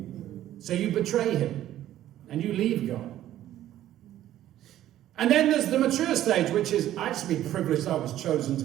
So you betray him, and you leave God. And then there's the mature stage, which is, I just be privileged I was chosen to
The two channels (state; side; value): quieter; left; 12.8 dB